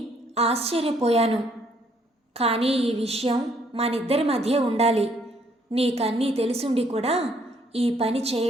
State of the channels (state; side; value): normal; both; correlation 0.67